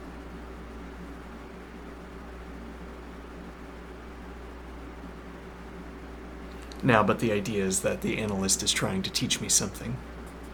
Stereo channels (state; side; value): identical; both; correlation 1.00